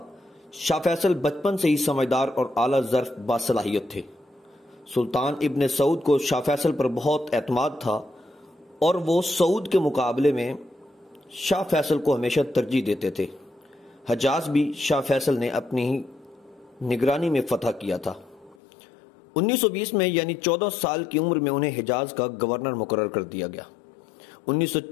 شاہ فیصل بچپن سے ہی سمجھدار اور اعلیٰ ظرف باصلاحیت تھے۔ سلطان ابن سعود کو شاہ فیصل پر بہت اعتماد تھا اور وہ سعود کے مقابلے میں شاہ فیصل کو ہمیشہ ترجیح دیتے تھے۔ حجاز بھی شاہ فیصل نے اپنی ہی نگرانی میں فتح کیا تھا۔ 1920 میں یعنی 14 سال کی عمر میں انہیں حجاز کا گورنر مقرر کر دیا گیا۔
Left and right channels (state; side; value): drops out; right; at 18.6 s